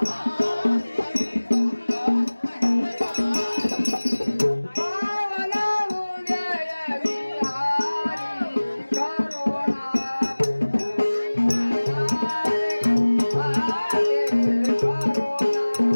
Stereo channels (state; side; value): inverted; both; correlation -1.00